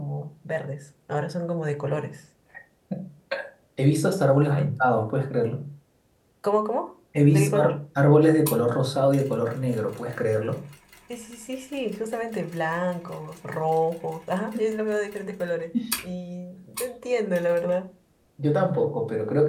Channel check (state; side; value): identical; both; correlation 1.00